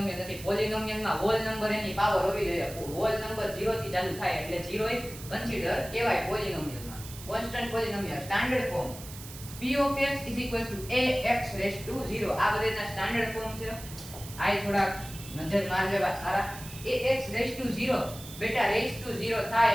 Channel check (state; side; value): noise; right; hiss, 14 dB below the sound